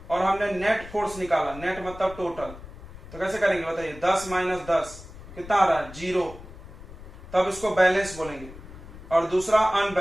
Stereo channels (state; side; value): noise; left; rumble, 16 dB below the sound